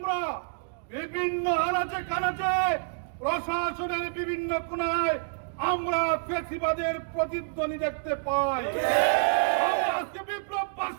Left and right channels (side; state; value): left; silent; digital silence